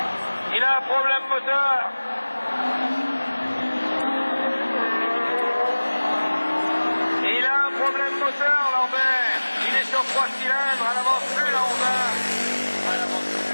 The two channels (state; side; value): inverted; both; correlation -1.00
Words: Il a un problème moteur. Il a un problème moteur, Lambert. Il est sur 3 cylindres, elle n'avance plus la Honda. Elle n'avance